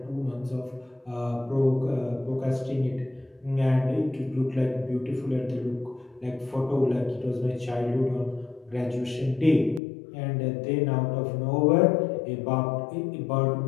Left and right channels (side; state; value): right; drops out; at 9.8 s